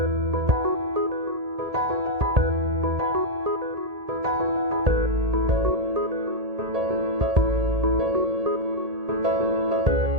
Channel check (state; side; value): late; left; 1.8 ms